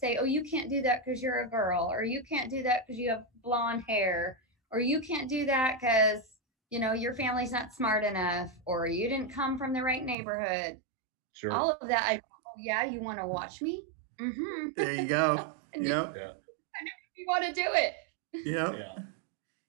"Oh, you can't do that because you're a girl," or "You can't do that because you have blonde hair," or "You can't do that because your family's not smart enough," or "You didn't come from the right neighborhood." Sure. All of that. Oh yeah, you want to watch me? Mm-hmm. There you go. And Yep. Yeah. you want to do it. Yep. Yeah.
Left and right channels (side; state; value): left; drops out; at 10.2 s